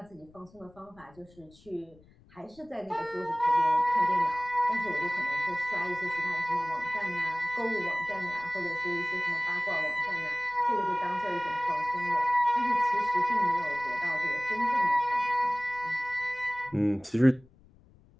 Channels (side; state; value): left; noise; rumble, 27 dB below the sound